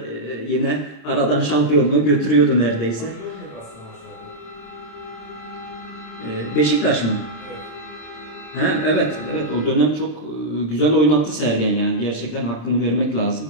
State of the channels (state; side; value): late; right; 26 ms